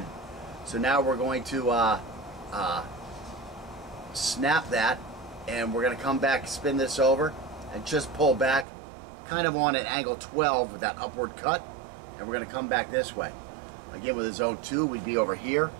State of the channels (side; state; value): left; drops out; at 8.7 s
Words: So now we're going to snap that, and we're going to come back, spin this over, and just pull back kind of on an angle 12 with that upward cut, and we're going to come back this way. Again, with a zone 2, we'd be over here,